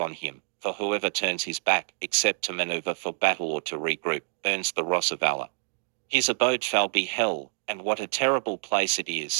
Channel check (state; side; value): silent; left; digital silence